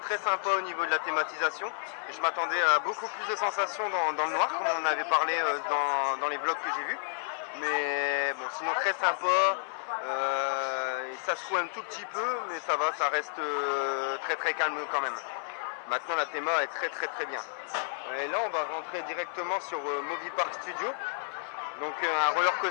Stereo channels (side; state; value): right; silent; 57 dB below the other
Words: sympa au niveau de la thématisation. Et je m'attendais à beaucoup plus de sensations dans le noir, comme on en avait parlé dans les vlogs que j'ai vus. Mais bon, sinon très sympa. Ça se trouve un tout petit peu, mais ça va, ça reste très calme quand même. Maintenant la théma est très bien. Et là on va rentrer directement sur Movie Park Studio. Donc un roller